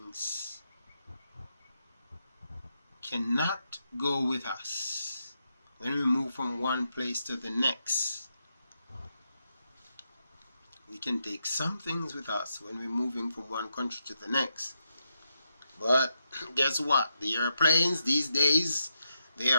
cannot go with us when we move from one place to the next. We can take some things with us when we're moving from one country to the next. But guess what? The airplanes these days, they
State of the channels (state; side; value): inverted; both; correlation -0.84